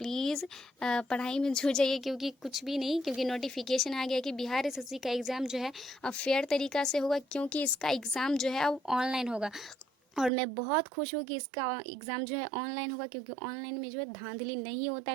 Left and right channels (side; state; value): left; drops out; at 10.3 s